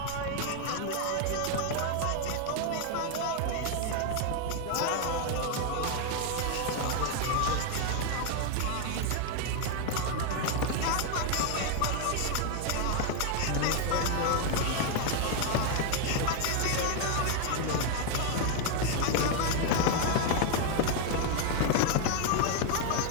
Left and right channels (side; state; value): both; different; correlation 0.00